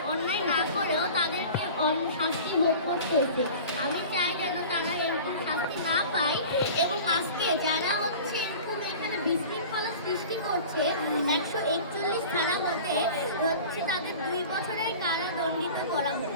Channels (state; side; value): inverted; both; correlation -0.39